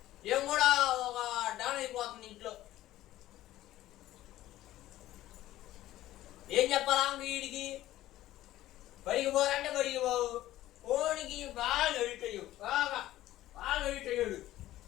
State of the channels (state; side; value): quieter; right; 14.8 dB